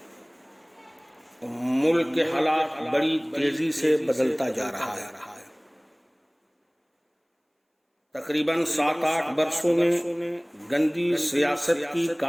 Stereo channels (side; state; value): both; identical; correlation 1.00